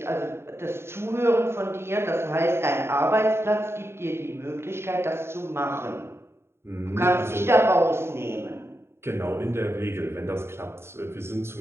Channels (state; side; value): late; left; 0.12 ms